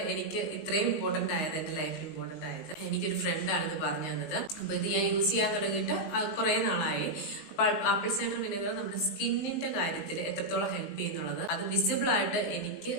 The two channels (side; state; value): right; late; 19 ms